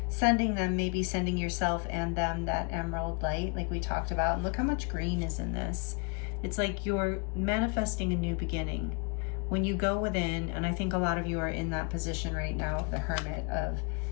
maybe sending yourself and them that emerald light like we talked about. And look how much green is in this. It's like you're manifesting a new beginning. When you go within, and I think a lot of you are in that position right now of the hermit, of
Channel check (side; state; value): right; quieter; 33.4 dB